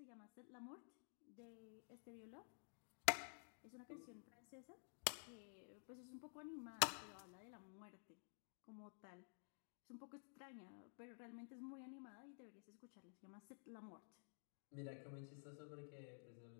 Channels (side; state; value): right; silent; digital silence